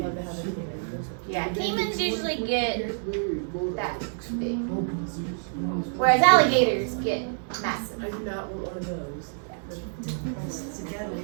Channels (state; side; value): silent; left; digital silence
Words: Yeah, caimans usually get that big. Whereas alligators get massive. I do not want one of those.